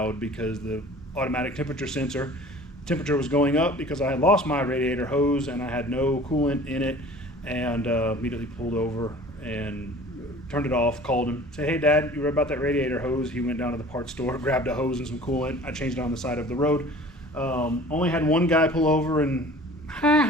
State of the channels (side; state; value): both; normal; correlation 0.45